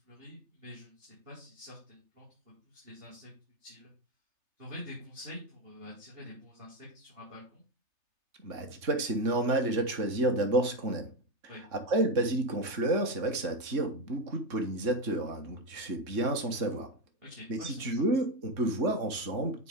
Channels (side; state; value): left; late; 3.6 ms